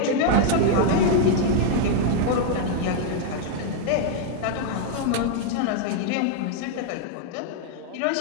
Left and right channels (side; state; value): both; different; correlation 0.00